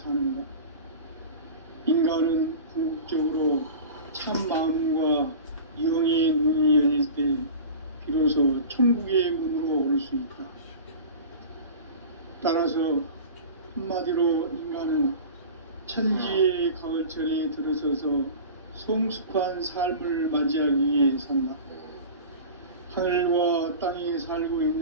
인간은 궁극적으로 참 마음과 영의 눈이 열릴 때 비로소 천국의 문으로 오를 수 있다. 따라서 한마디로 인간은 천지의 가을철에 들어서서 성숙한 삶을 맞이하기 위해 산다. 하늘과 땅에 살고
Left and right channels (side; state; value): both; inverted; correlation -0.35